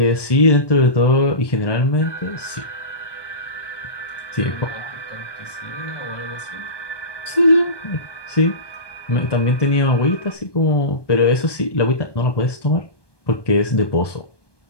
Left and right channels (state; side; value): late; right; 1.2 ms